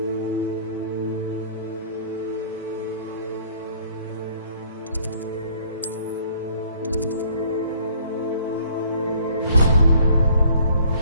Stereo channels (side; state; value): both; inverted; correlation -0.58